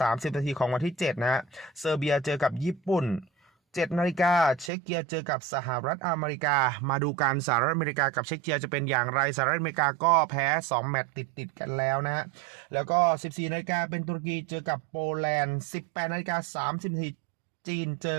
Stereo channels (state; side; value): drops out; left; at 4.7 s